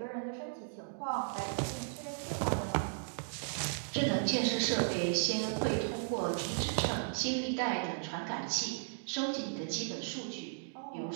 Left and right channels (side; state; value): left; silent; digital silence